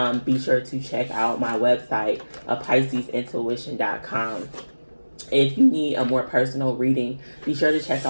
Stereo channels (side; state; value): both; inverted; correlation -1.00